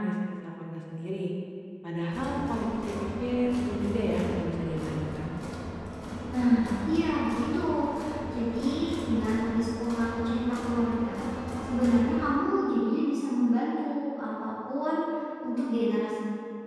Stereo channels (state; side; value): identical; both; correlation 1.00